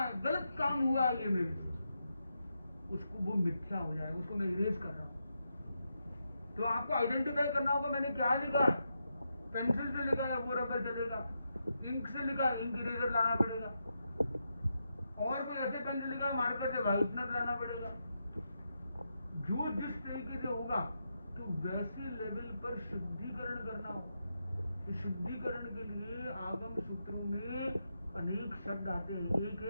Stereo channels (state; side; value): inverted; both; correlation -0.85